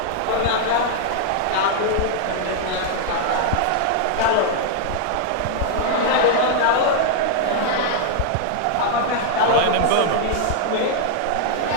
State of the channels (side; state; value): both; different; correlation 0.00